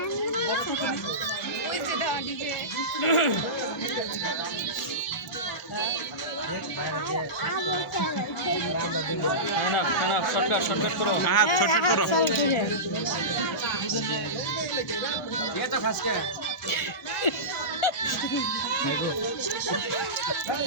শর্টকাট করো হ্যাঁ শর্টকাট করো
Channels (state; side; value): normal; both; correlation -0.18